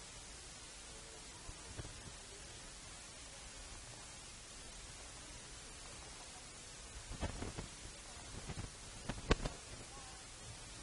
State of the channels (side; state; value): both; identical; correlation 1.00